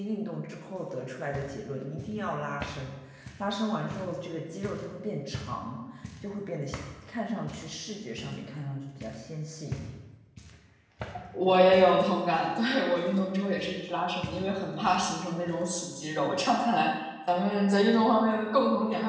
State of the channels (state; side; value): identical; both; correlation 1.00